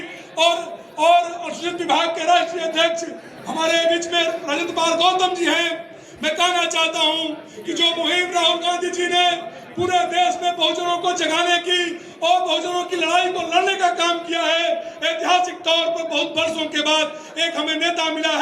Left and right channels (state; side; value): identical; both; correlation 1.00